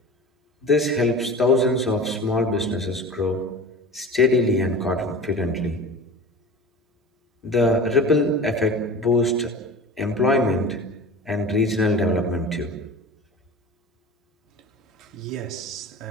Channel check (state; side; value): normal; both; correlation 0.35